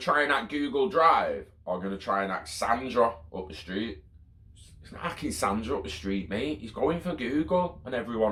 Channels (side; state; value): both; identical; correlation 1.00